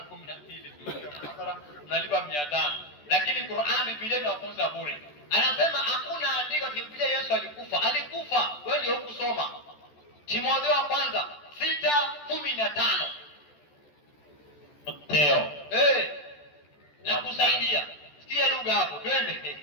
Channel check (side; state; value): right; late; 14 ms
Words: 12 unalipa 500. Lakini Qur'an Biblia inafunza bure. Anasema hakuna andiko Biblia Yesu alikufa. Alikufa, wewe ndio ukusoma. Timotheo wa kwanza 6:15. Teo. Na kusaidia. Sikia lugha hapo, twende.